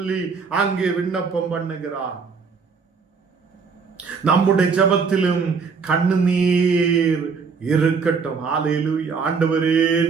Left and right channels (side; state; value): left; quieter; 5.3 dB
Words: அங்கே விண்ணப்பம் பண்ணுகிறார். நம்முடைய ஜெபத்திலும் கண்ணீர் இருக்கட்டும். ஹல்லேலூயா. ஆண்டவரே